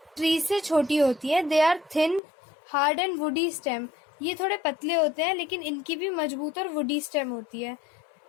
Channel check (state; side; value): drops out; right; at 2.2 s